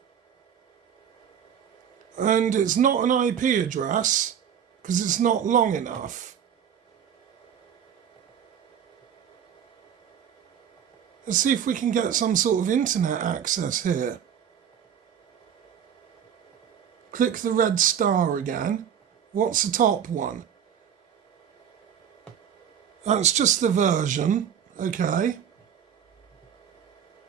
And it's not an IP address, because it's not long enough. Let's see if we can get some sort of internet access here. Click the red star again. What's the top one? That's just the version. Okay.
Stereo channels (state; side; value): quieter; left; 8.6 dB